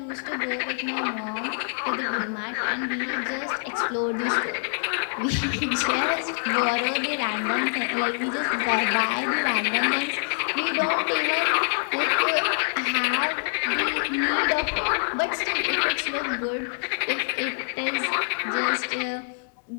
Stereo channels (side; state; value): right; silent; 61 dB below the other